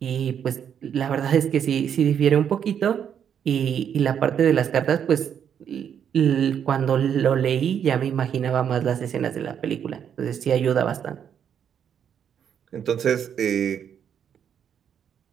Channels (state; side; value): quieter; left; 8.4 dB